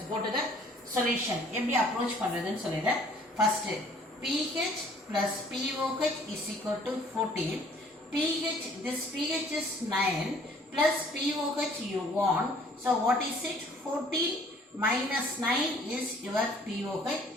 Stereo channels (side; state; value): both; normal; correlation 0.57